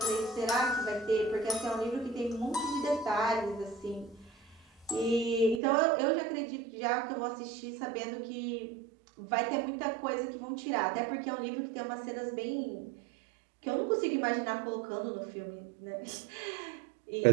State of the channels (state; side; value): drops out; left; at 5.6 s